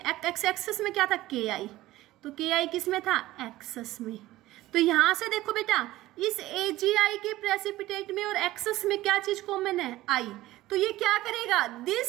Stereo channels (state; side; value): quieter; left; 16.6 dB